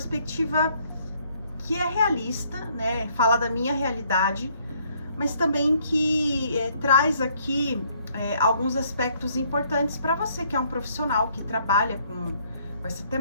que é realista, né? Fala da minha realidade, mas também que traz aqui alguns aspectos importantes para você que é um profissional que trabalha com essa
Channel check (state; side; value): inverted; both; correlation -0.66